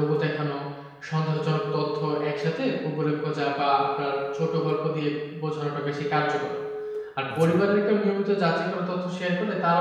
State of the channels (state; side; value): identical; both; correlation 1.00